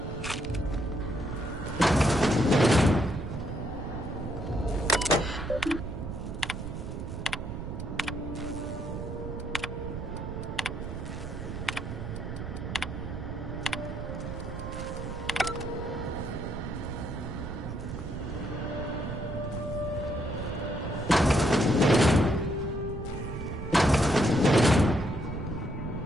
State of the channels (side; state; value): right; noise; rumble, 6 dB below the sound